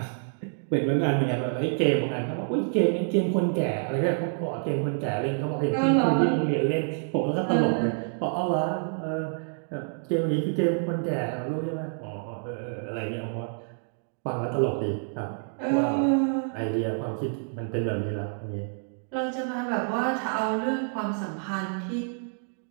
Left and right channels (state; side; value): silent; left; 60 dB below the other